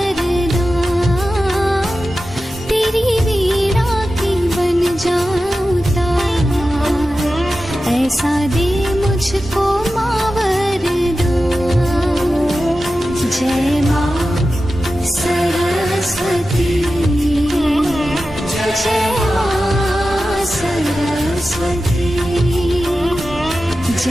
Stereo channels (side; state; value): both; normal; correlation 0.93